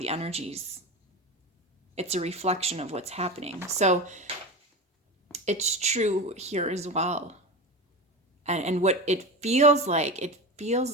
energies. It's a reflection of what's happening. So it's true here as well. And what it feels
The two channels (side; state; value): both; normal; correlation 0.25